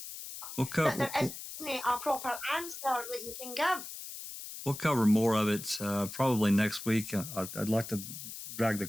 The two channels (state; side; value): noise; left; hiss, 10 dB below the sound